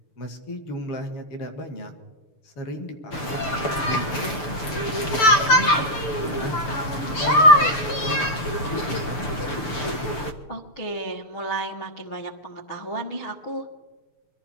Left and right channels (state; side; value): late; right; 6.8 ms